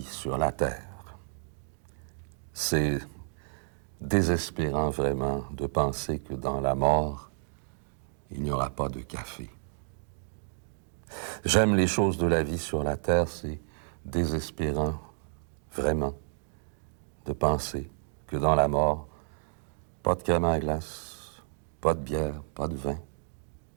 sur la terre. C'est désespérant vraiment de penser que dans la mort, il n'y aura pas de café. J'aime les choses de la vie sur la terre, c'est désespérant vraiment de penser que dans la mort, pas de crème à glace, pas de bière, pas de vin,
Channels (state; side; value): silent; left; digital silence